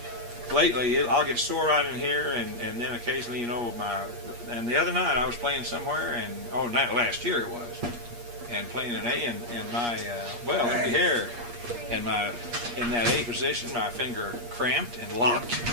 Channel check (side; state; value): left; late; 8.4 ms